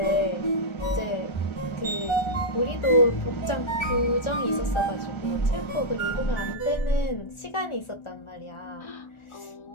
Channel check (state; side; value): late; right; 1.4 ms